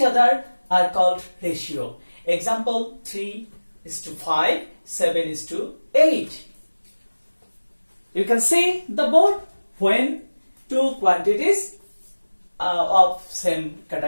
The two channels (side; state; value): both; inverted; correlation -1.00